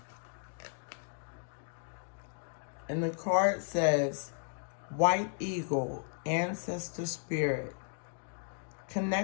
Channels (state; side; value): silent; right; digital silence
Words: And the card says, White Eagle, Ancestor Spirit.